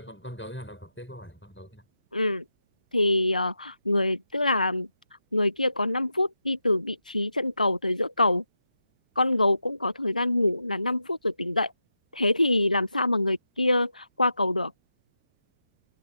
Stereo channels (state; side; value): inverted; both; correlation -0.88